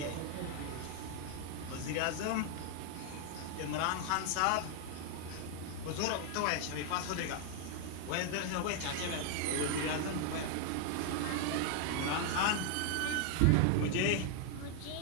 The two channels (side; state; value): both; different; correlation 0.00